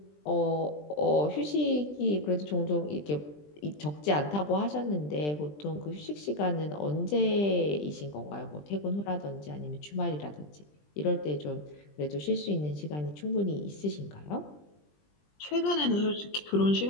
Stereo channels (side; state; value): right; late; 20 ms